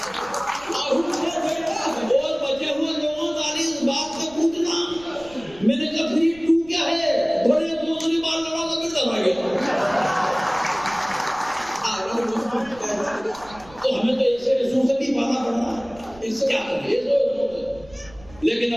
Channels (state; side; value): noise; right; rumble, 22 dB below the sound